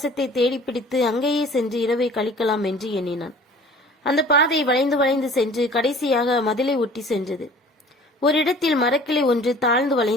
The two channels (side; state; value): both; normal; correlation 0.48